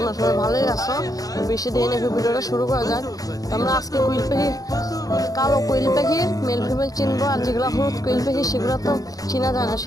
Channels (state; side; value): late; right; 0.17 ms